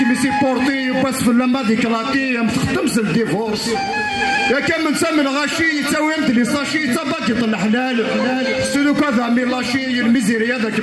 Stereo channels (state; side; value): identical; both; correlation 1.00